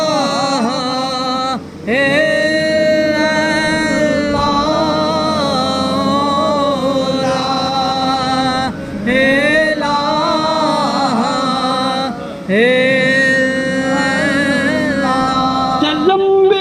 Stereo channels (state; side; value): identical; both; correlation 1.00